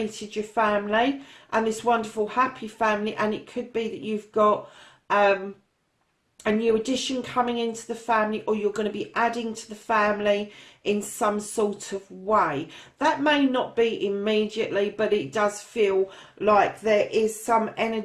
your family and this wonderful happy family, and it could be that you've got a new addition coming into the family, or you're going to be adding to the family in some sort of way. That may not be immediately, but it does feel like there is some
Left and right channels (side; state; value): both; identical; correlation 1.00